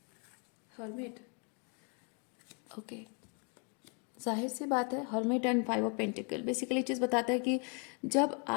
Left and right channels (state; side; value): quieter; right; 37.0 dB